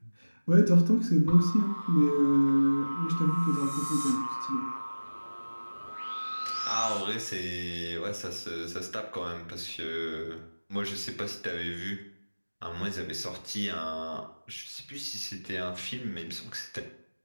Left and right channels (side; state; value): both; inverted; correlation -1.00